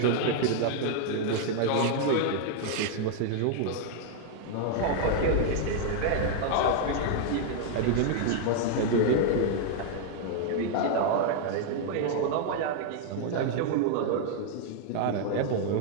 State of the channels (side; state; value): both; different; correlation 0.00